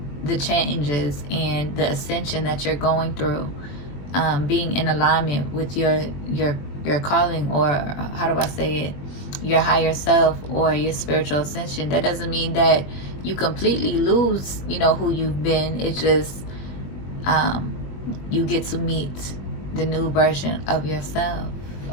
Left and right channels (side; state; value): right; late; 21 ms